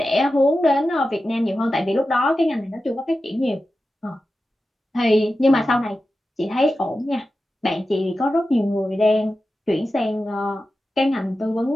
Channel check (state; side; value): normal; both; correlation 0.92